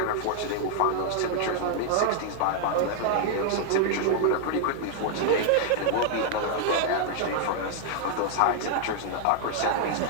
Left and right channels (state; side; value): different; both; correlation -0.01